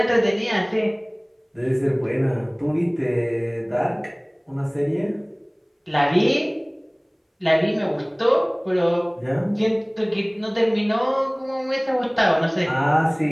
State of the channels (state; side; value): identical; both; correlation 1.00